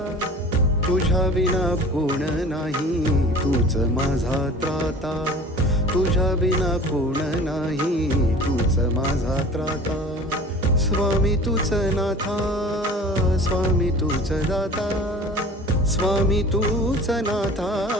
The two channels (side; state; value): both; normal; correlation 0.43